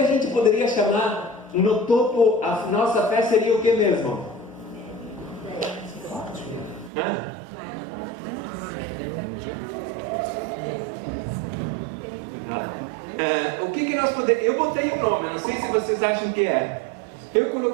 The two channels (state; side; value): drops out; left; at 6.9 s